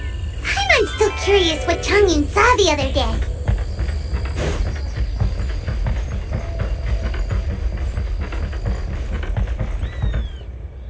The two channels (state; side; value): identical; both; correlation 1.00